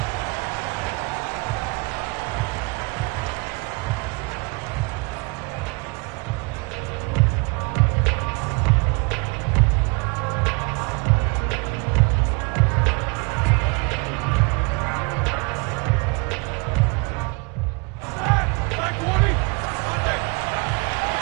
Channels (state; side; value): quieter; left; 30.1 dB